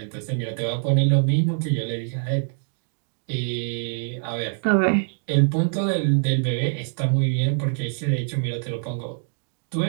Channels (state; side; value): silent; left; digital silence